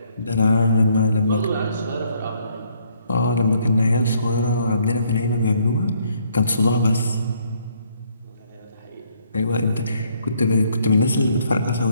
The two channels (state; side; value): inverted; both; correlation -0.68